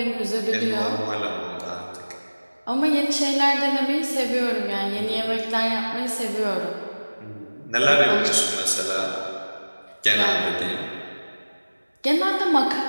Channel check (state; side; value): inverted; both; correlation -1.00